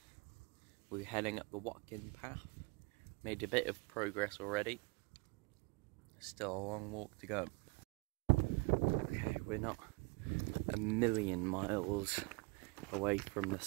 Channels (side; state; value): left; quieter; 28.3 dB